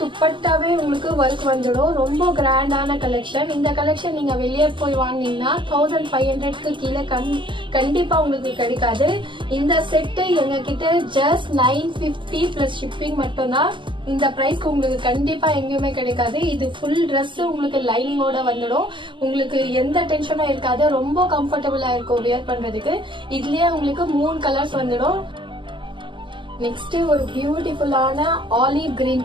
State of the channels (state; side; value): late; left; 0.24 ms